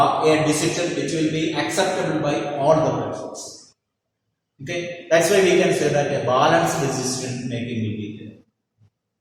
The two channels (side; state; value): both; identical; correlation 1.00